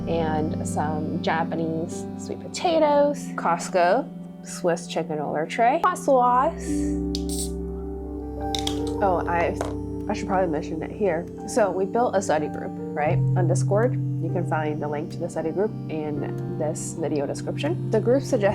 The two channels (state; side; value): identical; both; correlation 1.00